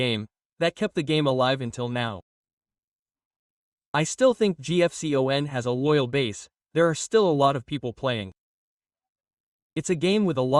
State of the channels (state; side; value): identical; both; correlation 1.00